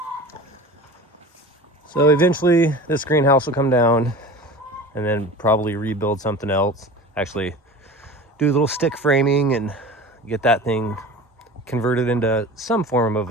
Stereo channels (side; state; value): both; normal; correlation 0.36